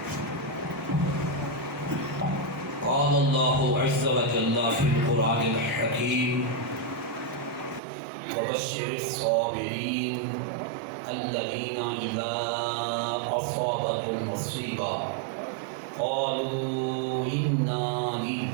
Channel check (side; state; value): left; drops out; at 7.8 s